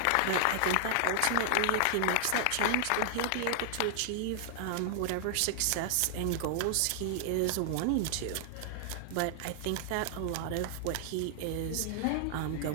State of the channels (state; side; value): different; both; correlation 0.00